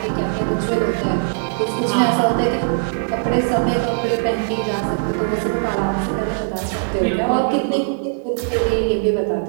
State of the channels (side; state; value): left; silent; digital silence